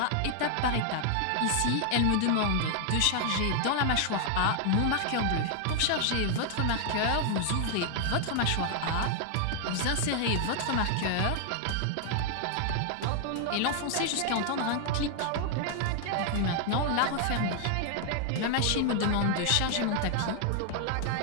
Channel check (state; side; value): different; both; correlation 0.00